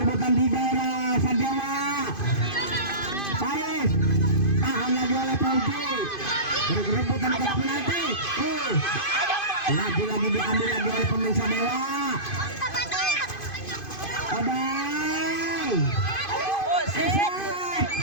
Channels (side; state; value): right; late; 2.5 ms